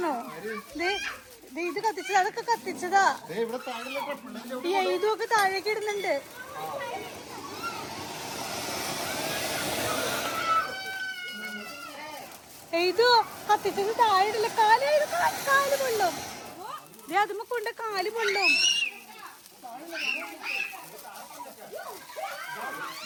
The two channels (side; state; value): both; identical; correlation 1.00